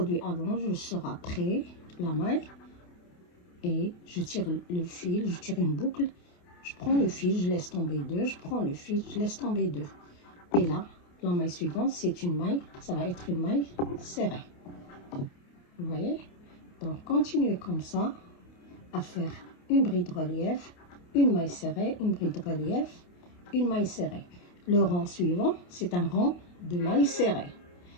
avant, je sors après la maille et je tire le fil, je tire une boucle, je prends le fil, je laisse tomber deux, je prends le fil, je laisse tomber deux. Et là, la maille suivante, c'est une maille, ça va être une maille serrée. Vous voyez? Donc, continuez comme ça à faire une bride relief, une maille serrée, une bride relief, une maille serrée. Le rang suivant, c'est un rang de maille serrée.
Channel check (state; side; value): late; right; 28 ms